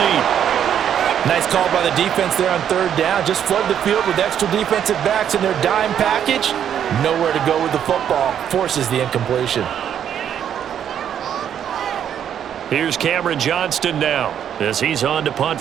Nice call by the defense there on 3rd down. Just flood the field with extra defensive backs in their dime package. Nowhere to go with the football. Forces the incompletion. Here's Cameron Johnston now as he's on to punt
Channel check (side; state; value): left; quieter; 9.3 dB